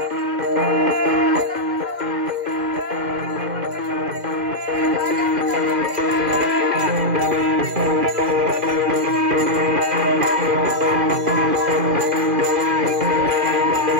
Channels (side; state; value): left; late; 2.5 ms